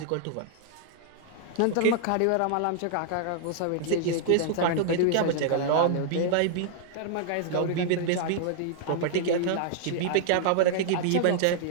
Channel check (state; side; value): different; both; correlation -0.01